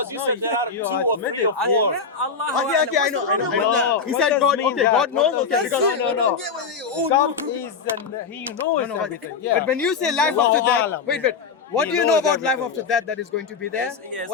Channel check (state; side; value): quieter; right; 5.5 dB